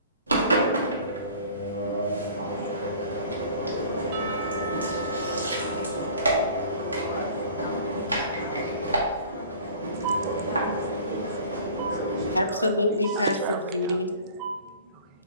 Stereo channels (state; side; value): inverted; both; correlation -0.46